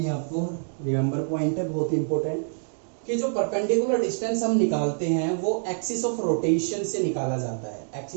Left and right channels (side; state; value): left; silent; digital silence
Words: है आपको, रिमेंबर पॉइंट है बहुत इंपॉर्टेंट, कि जो परपेंडिकुलर डिस्टेंस हम निकालते हैं वो एक्सिस ऑफ रोटेशन से निकाला जाता है,